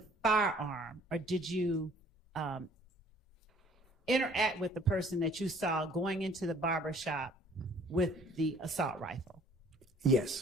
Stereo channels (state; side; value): normal; both; correlation 0.56